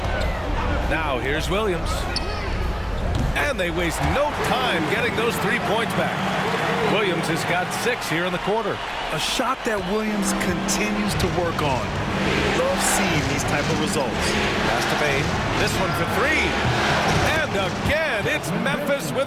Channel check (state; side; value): identical; both; correlation 1.00